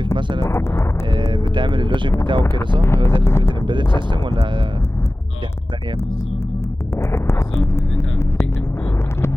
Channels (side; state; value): both; normal; correlation 0.97